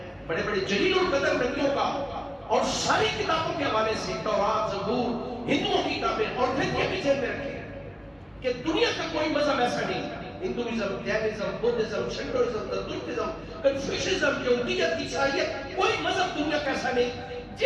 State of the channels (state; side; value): identical; both; correlation 1.00